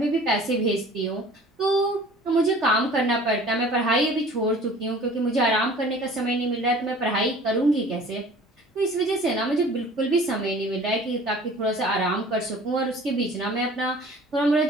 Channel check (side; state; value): both; normal; correlation 0.47